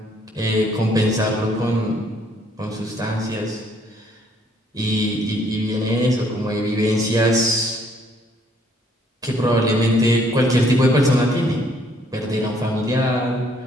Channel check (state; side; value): normal; both; correlation 0.65